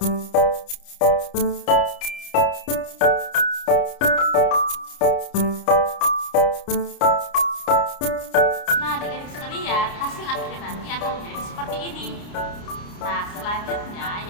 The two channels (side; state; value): right; late; 29 ms